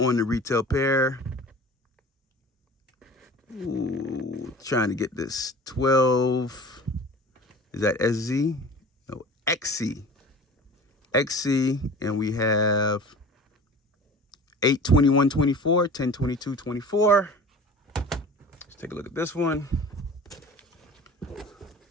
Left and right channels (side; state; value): both; normal; correlation 0.40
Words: the retail pair, trying to get this 12, is that SZ? No, XC. XC, and we have 8/21/24, 10/22/24. Let's take a look at this one.